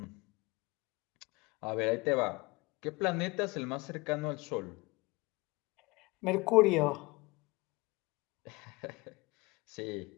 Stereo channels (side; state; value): right; quieter; 24.2 dB